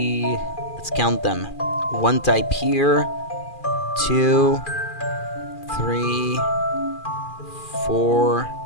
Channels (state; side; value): late; right; 2.4 ms